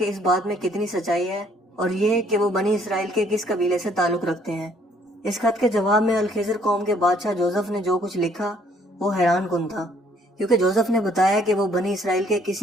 इस बात में कितनी सच्चाई है और ये कि वो बनी इसराइल के किस कबीले से ताल्लुक रखते हैं। इस खत के जवाब में अल खिजर कौम के बादशाह जोसेफ ने जो कुछ लिखा वो हैरान कुन था, کیونکہ جوزف نے بتایا کہ وہ بنی اسرائیل کے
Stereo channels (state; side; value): normal; both; correlation 0.63